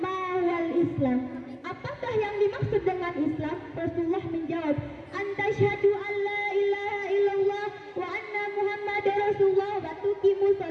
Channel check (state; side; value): identical; both; correlation 1.00